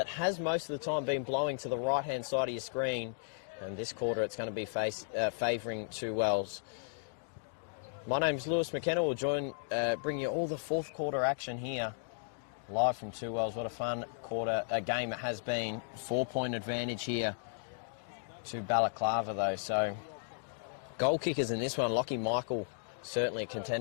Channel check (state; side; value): silent; right; digital silence